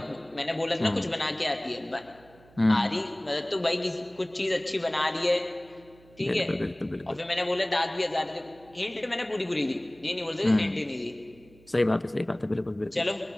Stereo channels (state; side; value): noise; right; hum, 26 dB below the sound